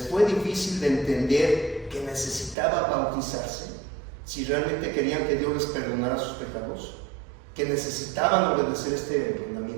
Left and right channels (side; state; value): left; drops out; at 2.6 s